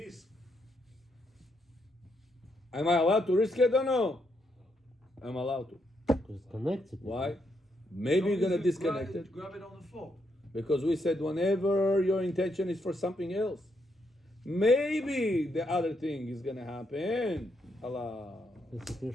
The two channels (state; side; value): normal; both; correlation 0.78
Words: Am I allowed to risk it or no? I'm allowed to. Because it's connected. Why? Maybe you're gonna disconnect it. Grab it on the floor. Because we said whenever your intention is for something else, maybe the other thing is gonna happen. Allah. It's a